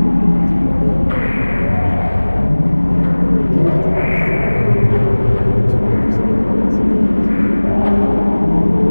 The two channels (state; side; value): inverted; both; correlation -1.00